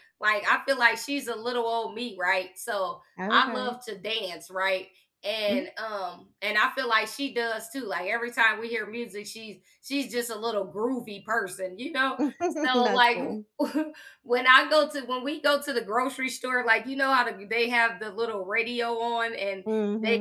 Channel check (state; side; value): identical; both; correlation 1.00